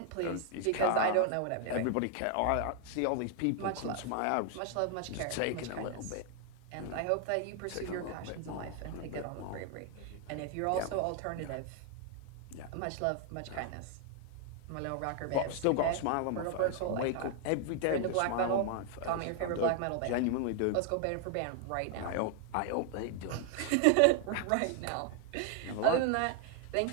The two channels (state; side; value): different; both; correlation 0.00